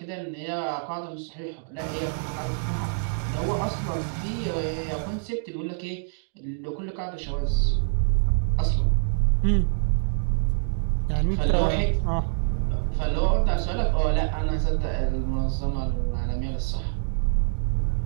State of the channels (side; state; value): left; silent; digital silence